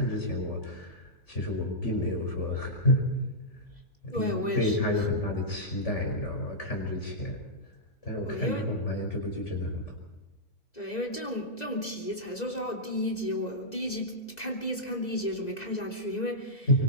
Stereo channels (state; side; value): late; right; 2.0 ms